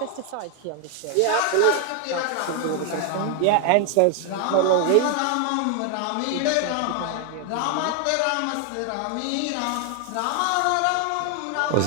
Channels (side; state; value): both; different; correlation 0.00